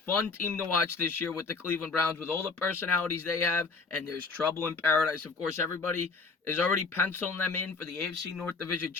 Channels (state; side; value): quieter; right; 4.3 dB